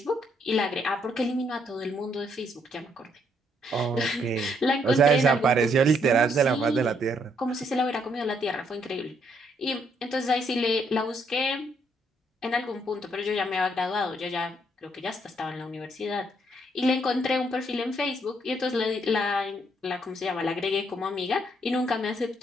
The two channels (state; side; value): normal; both; correlation 0.71